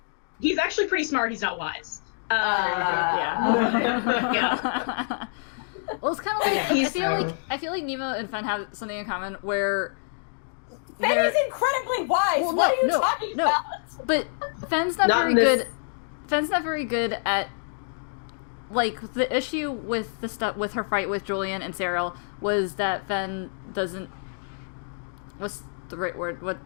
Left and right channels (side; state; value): right; silent; digital silence